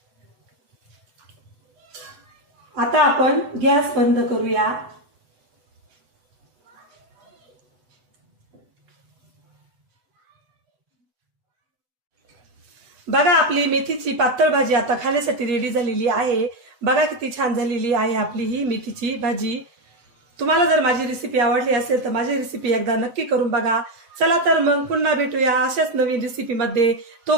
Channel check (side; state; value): left; late; 8.0 ms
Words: आता आपण गॅस बंद करूया। बघा, आपली मेथीची पातळ भाजी आता खाण्यासाठी रेडी झालेली आहे। बघा किती छान झालेली आहे आपली ही मेथीची भाजी। तुम्हाला जर माझी रेसिपी आवडली असेल तर माझी रेसिपी एकदा नक्की करून बघा। चला तर मग पुन्हा भेटूया अशाच नवीन रेसिपी मध्ये।